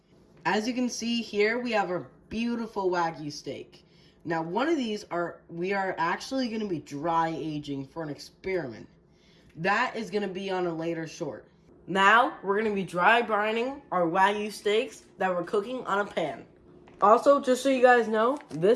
As you can see here we have a beautiful Wagyu steak. Now one of these we are actually going to be dry aging for an experiment. That is going to be on a later short. Now, we're going to be dry brining our Wagyu steaks that we're cooking on a pan. Also, just so you guys know,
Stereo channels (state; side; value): identical; both; correlation 1.00